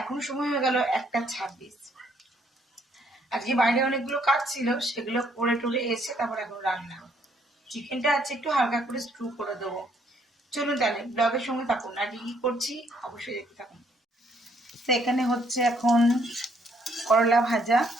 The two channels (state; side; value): normal; both; correlation 0.68